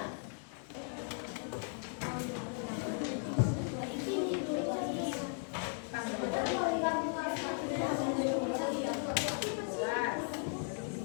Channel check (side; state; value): right; silent; 53 dB below the other